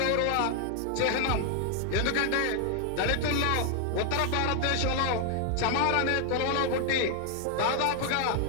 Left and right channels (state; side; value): different; both; correlation 0.00